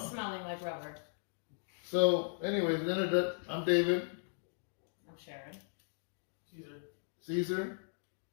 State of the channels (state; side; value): silent; right; digital silence